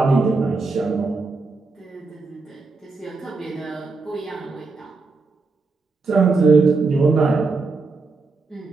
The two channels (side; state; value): left; quieter; 3.9 dB